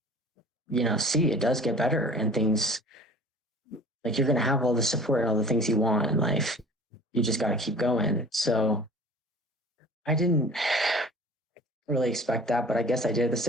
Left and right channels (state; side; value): normal; both; correlation 0.45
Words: see it does get better, and things, like, you're going to have all the support and all the things you want in life. You just got to keep going. So I didn't really expect that, but I guess I did at the